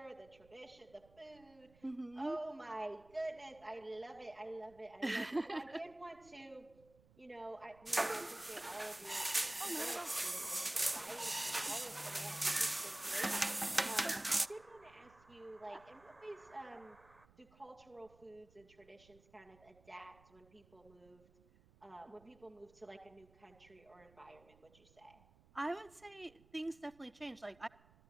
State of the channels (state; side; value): noise; right; rumble, 26 dB below the sound